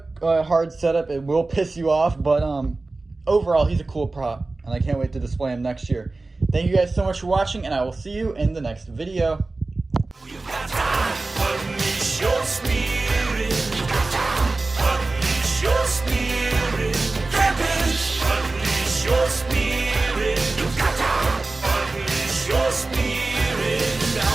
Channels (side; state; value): left; quieter; 3.3 dB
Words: a hard setup. It will piss you off, but overall, he's a cool prop. And I can't wait to display him next year. Thank you guys so much for watching, and I will see you in the next video. Unleash your spirit. Unleash your spirit. Unleash your spirit. Unleash your spirit.